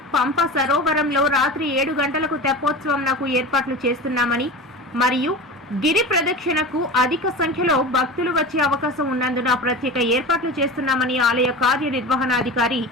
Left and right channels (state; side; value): normal; both; correlation 0.31